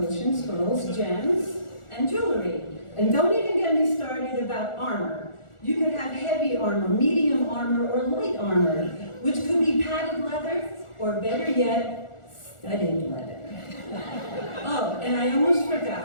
scrolls, gems, and jewelry. And don't even get me started about armor. You could have heavy armor, medium armor, or light armor, which could be padded leather, or better yet, studded leather. Oh, and I almost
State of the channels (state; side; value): late; right; 1.4 ms